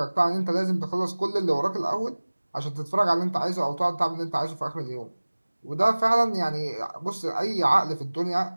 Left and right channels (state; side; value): inverted; both; correlation -1.00